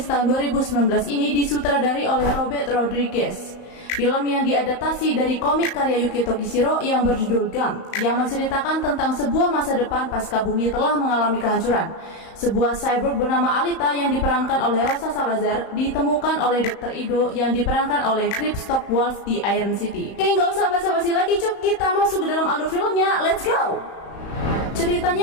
tahun 2019 ini disutradari oleh Robert Rodriguez. Film yang diadaptasi dari komik karya Yuki Tokishiro yang berjudul Gun, yang menceritakan tentang sebuah masa depan pasca bumi telah mengalami kehancuran. Sebuah cyborg bernama Alita yang diperankan oleh Rosa Salazar ditemukan oleh Dr. Ido yang diperankan oleh Kristoff Waltz di Iron City. Oke, nggak usah basa-basi lagi cuk, kita masuk ke dalam alur filmnya, let's go!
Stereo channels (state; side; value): late; right; 35 ms